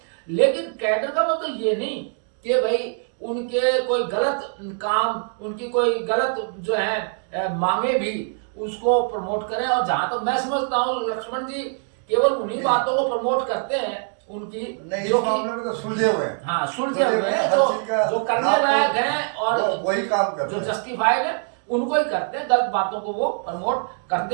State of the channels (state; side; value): silent; left; 63 dB below the other